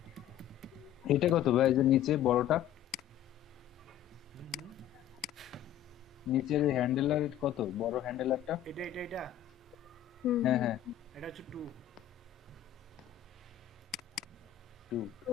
এটা কত ভাই, এই যে নিচে বড়টা, নিচের হ্যান্ডেলার কত, বড় হ্যান্ডেলারটা? এটা হুম, হ্যাঁ হ্যাঁ এটা হচ্ছে 2। 2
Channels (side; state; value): right; quieter; 11.4 dB